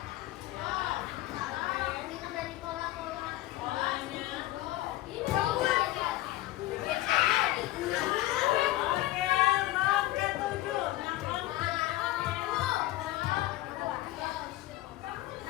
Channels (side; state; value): right; quieter; 16.7 dB